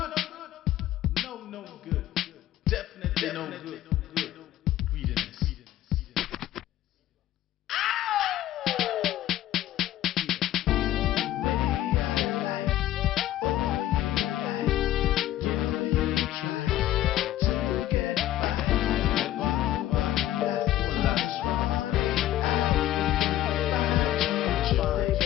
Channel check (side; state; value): right; quieter; 13.5 dB